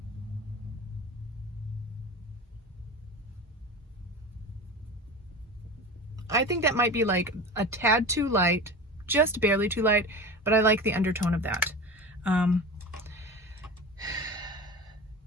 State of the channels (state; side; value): normal; both; correlation 0.31